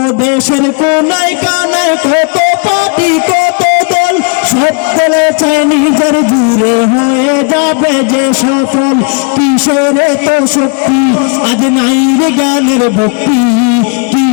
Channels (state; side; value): quieter; right; 33.2 dB